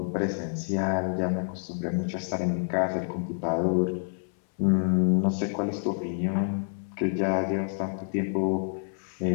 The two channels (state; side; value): silent; right; 58 dB below the other